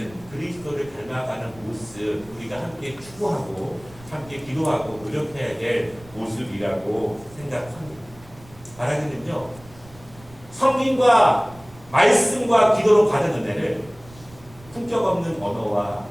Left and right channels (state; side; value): noise; right; rumble, 22 dB below the sound